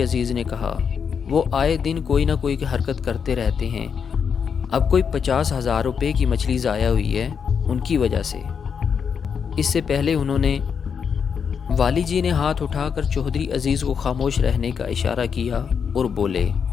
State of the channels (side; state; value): right; quieter; 6.7 dB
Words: عزیز نے کہا۔ وہ آئے دن کوئی نہ کوئی حرکت کرتے رہتے ہیں۔ اب کوئی 50,000 روپے کی مچھلی ضائع ہوئی ہے ان کی وجہ سے۔ اس سے پہلے انہوں نے والی جی نے ہاتھ اٹھا کر چودھری عزیز کو خاموش رہنے کا اشارہ کیا اور بولے،